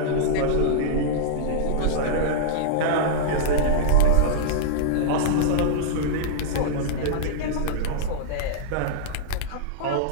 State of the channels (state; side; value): different; both; correlation -0.03